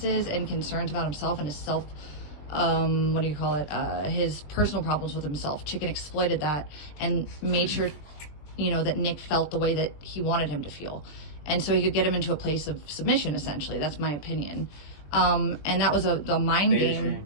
and concerns about himself and his self, his personal problems with himself. Chicken exploited that and made sure, you know, that Nick felt the way that he wanted him to feel. And so he could get him into a place of submission, essentially. That's my opinion. And that was the mind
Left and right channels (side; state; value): right; late; 20 ms